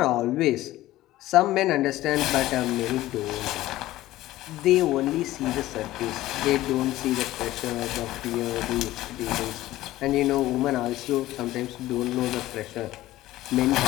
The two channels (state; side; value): quieter; right; 16.0 dB